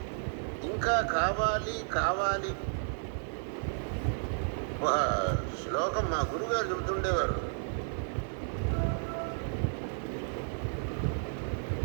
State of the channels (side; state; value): left; silent; 56 dB below the other